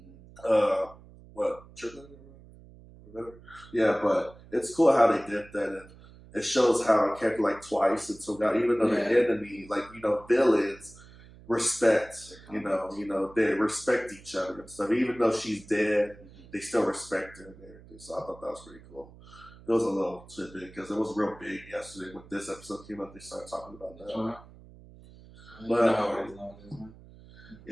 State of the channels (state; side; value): noise; right; hum, 21 dB below the sound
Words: yeah, but it's cool how they did that, and it shows how a character like Twice and Toga, even though they're enemy, villains respect, they respect each other and stuff. Even though she's dead, they still respect her and everything. So I thought that was pretty cool. It was a little tidbit because it was real big yesterday when this episode came out. They started talking about that.